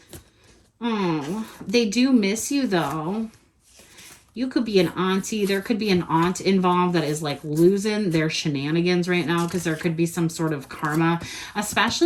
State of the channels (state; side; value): identical; both; correlation 1.00